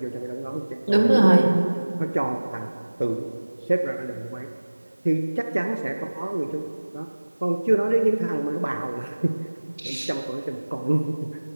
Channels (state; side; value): inverted; both; correlation -1.00